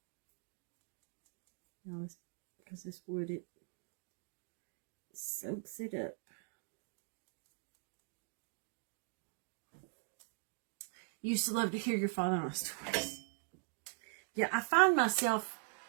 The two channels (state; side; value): silent; left; 50 dB below the other